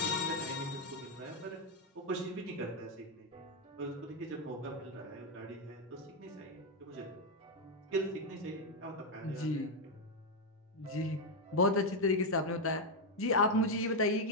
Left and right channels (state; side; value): normal; both; correlation 0.03